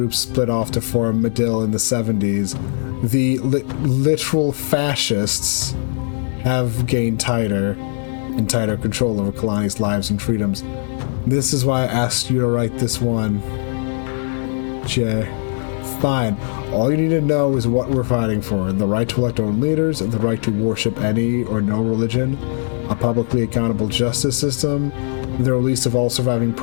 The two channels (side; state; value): right; silent; digital silence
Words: split off to form Medill in the 70s, the literal fascists have gained tighter control over Kalani's lives and freedoms. This is why I asked you to write this one. Jay. Fine. All you need to know is what we're fighting for. The right to elect our own leaders, the right to worship any or no religion, a publicly accountable justice system, the release of all surviving